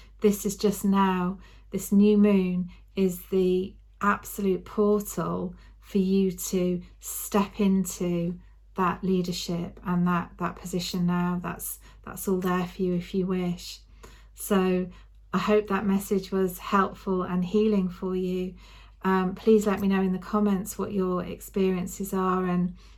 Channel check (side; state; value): both; identical; correlation 1.00